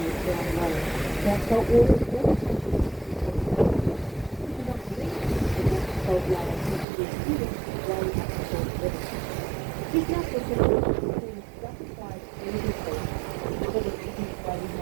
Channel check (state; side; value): drops out; left; at 6.9 s